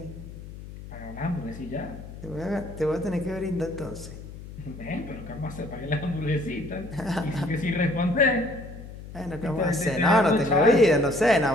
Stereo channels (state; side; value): noise; left; hum, 13 dB below the sound